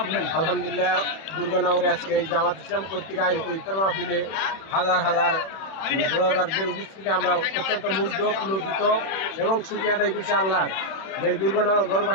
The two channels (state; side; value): late; right; 31 ms